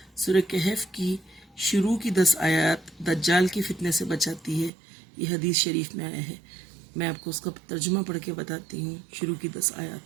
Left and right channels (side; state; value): left; drops out; at 4.7 s